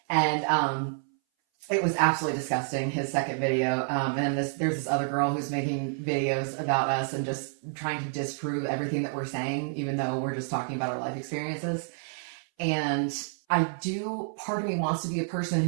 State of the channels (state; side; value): silent; left; 59 dB below the other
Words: And it was absolutely disgusting, his second video. And then there's this other girl who's making videos about us and just trying to disprove everything that we're saying, even though we're just talking about our life experiences. And part of me wants to be a person